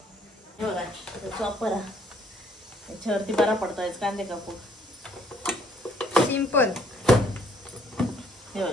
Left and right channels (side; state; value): both; normal; correlation 0.65